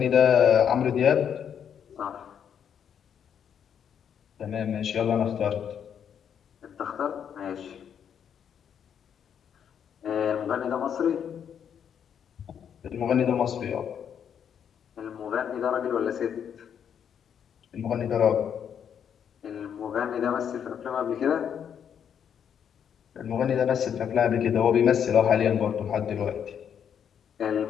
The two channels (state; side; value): quieter; right; 8.3 dB